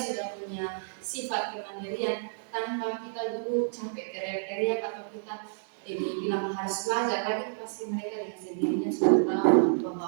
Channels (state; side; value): silent; left; digital silence